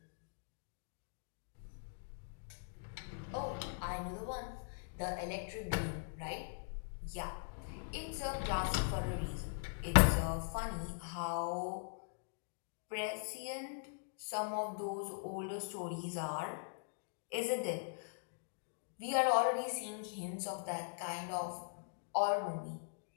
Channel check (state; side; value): silent; right; digital silence